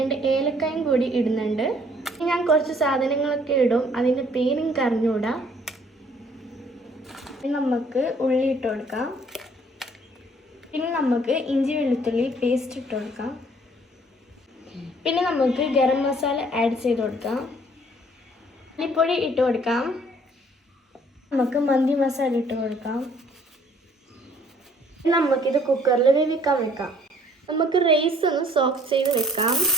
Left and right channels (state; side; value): normal; both; correlation 0.60